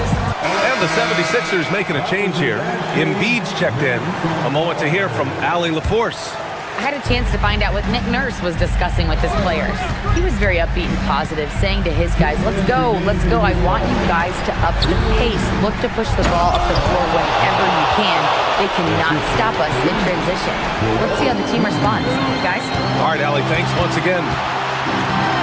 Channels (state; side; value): identical; both; correlation 1.00